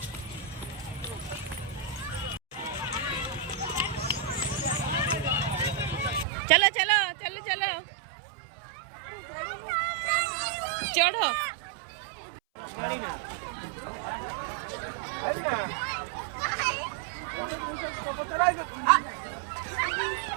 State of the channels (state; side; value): drops out; left; at 6.2 s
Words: चलो चलो चलो चलो चढ़ो